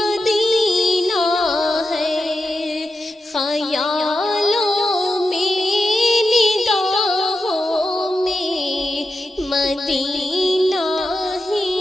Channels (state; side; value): normal; both; correlation 0.88